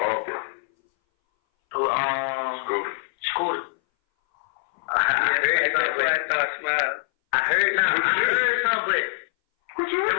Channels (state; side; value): silent; right; 60 dB below the other